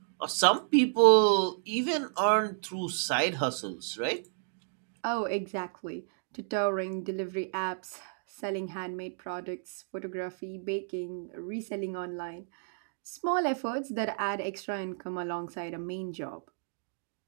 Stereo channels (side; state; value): left; silent; digital silence